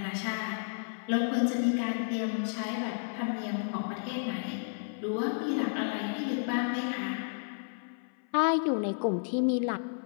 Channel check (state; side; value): silent; right; 57 dB below the other